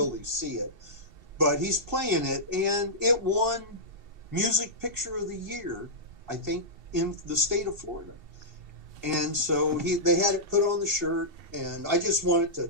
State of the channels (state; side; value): late; left; 2.7 ms